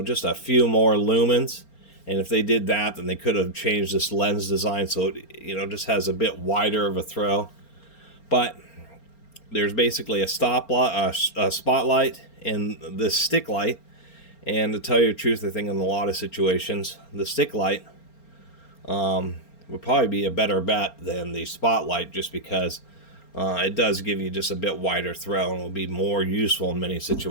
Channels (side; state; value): right; late; 4.3 ms